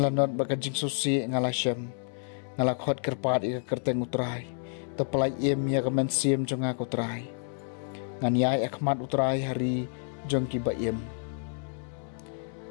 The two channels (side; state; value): right; silent; digital silence